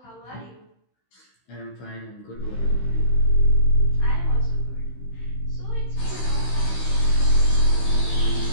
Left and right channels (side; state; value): right; late; 16 ms